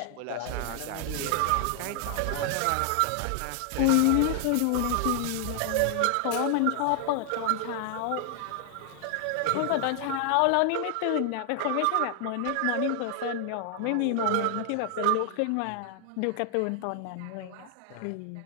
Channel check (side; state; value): both; different; correlation 0.00